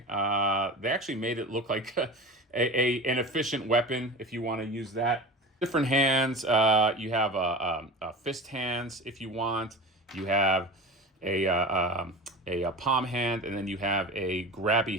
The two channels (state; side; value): normal; both; correlation 0.31